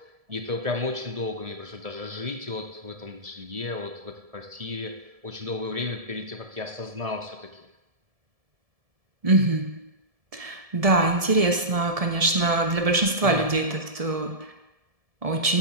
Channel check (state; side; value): late; left; 1.7 ms